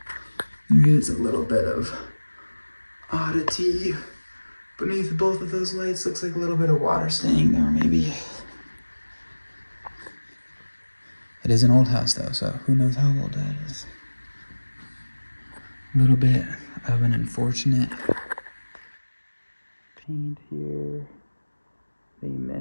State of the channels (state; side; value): inverted; both; correlation -1.00